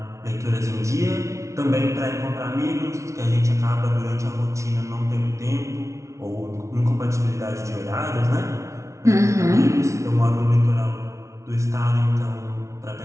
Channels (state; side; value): late; left; 0.14 ms